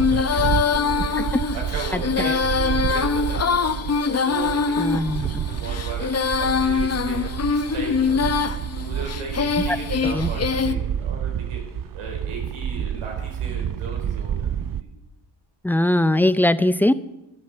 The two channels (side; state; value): both; normal; correlation 0.40